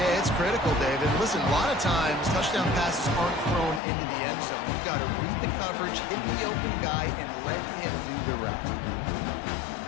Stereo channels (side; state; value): right; drops out; at 3.8 s